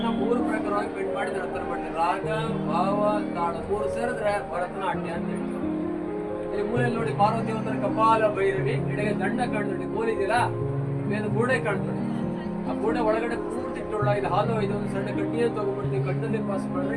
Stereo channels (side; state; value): both; identical; correlation 1.00